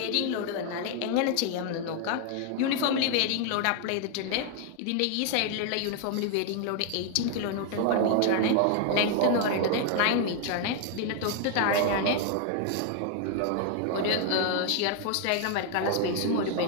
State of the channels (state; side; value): different; both; correlation 0.00